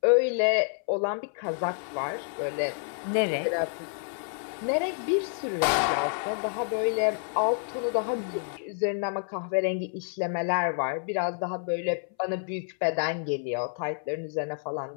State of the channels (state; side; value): silent; right; 59 dB below the other